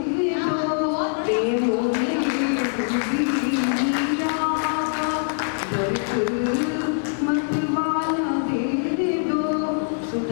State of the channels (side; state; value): right; silent; 59 dB below the other